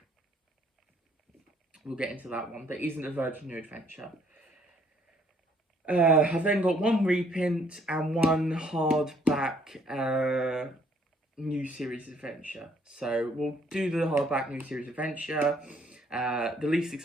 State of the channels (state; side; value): normal; both; correlation 0.65